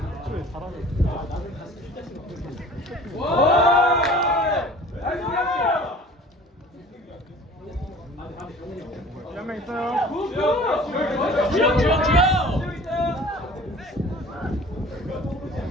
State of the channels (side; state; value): both; normal; correlation 0.46